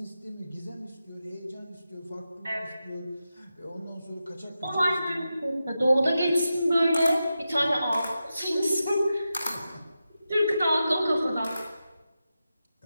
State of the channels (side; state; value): both; inverted; correlation -0.90